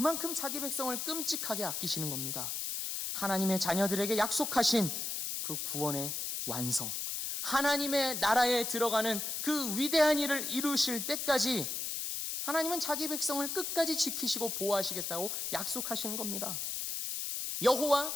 자기 백성을 끔찍하게 아끼시는 겁니다. 하나님의 자녀들에게 약속하신 그 구원의 완성, 하나님의 나라에 들어가는 그 위대한 일을 이루실 때까지 하나님은 자기 백성을 끝까지 지키시고 보호하시겠다고 약속하시는 겁니다. 여호와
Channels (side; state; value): left; noise; hiss, 3 dB below the sound